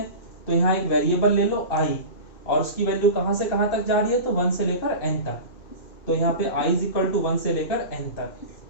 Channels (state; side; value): late; right; 2.3 ms